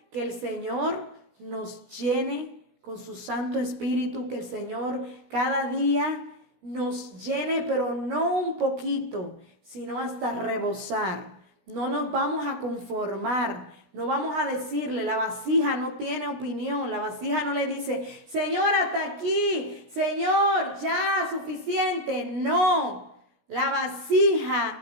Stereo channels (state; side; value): late; left; 17 ms